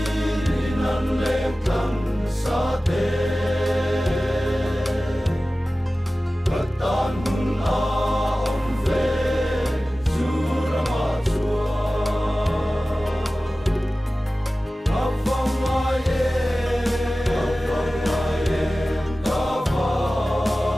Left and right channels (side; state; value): both; normal; correlation 0.96